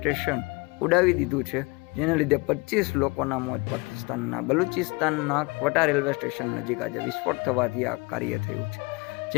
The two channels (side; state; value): right; quieter; 27.0 dB